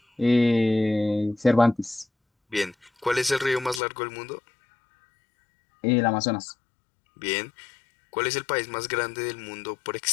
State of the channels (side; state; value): right; drops out; at 3.8 s